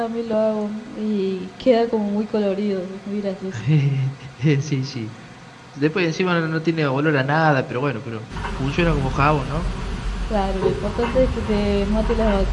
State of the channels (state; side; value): identical; both; correlation 1.00